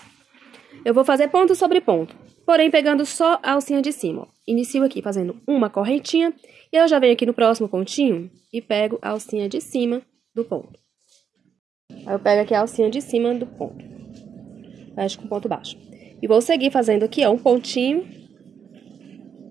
eu vou fazer ponto sobre ponto, porém pegando só a alcinha de cima. Ó. Inicio aqui fazendo uma correntinha, e eu já venho aqui no próximo pontinho e pego a alcinha de cima do ponto. Aí eu pego aqui a alcinha de cima do ponto, fecho com ponto baixo. E vou seguir fazendo aqui, ó, um pontinho.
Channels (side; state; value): left; quieter; 7.4 dB